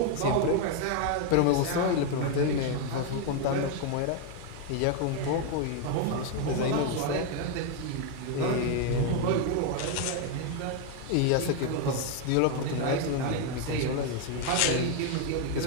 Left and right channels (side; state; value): both; different; correlation 0.01